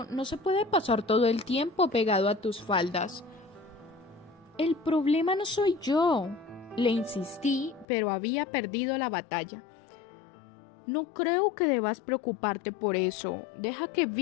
no se puede pasar todo el tiempo pegado a tus faldas. El problema no soy yo, le insistí, pero había perdido la batalla. No creo que debas preocuparte por eso. Deja que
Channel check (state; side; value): drops out; right; at 7.9 s